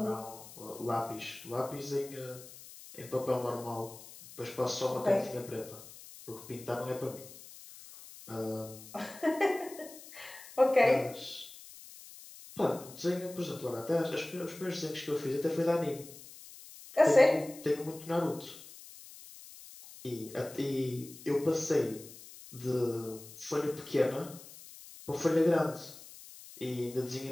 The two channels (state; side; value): noise; left; hiss, 17 dB below the sound